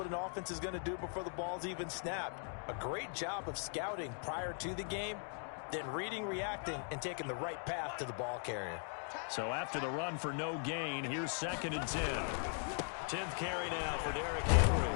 an offense is going to do before the ball's even snapped. A great job of scouting prior to the game, then reading, reacting, and taking the right path to the ball carrier. So after the run for no gain, here's 2nd and 10. 10th carry now for Derrick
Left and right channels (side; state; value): right; silent; 51 dB below the other